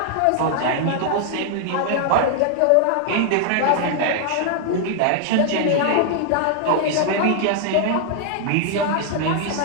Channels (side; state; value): both; different; correlation 0.00